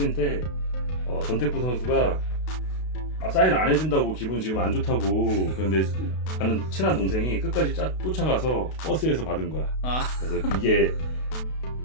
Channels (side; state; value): right; late; 32 ms